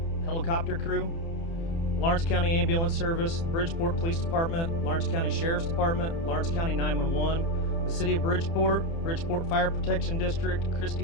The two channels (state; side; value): late; right; 30 ms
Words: helicopter crew, Lawrence County Ambulance Service, Bridgeport Police Department, Lawrence County Sheriff's Department, Lawrence County 911, the City of Bridgeport, Bridgeport Fire Protection District,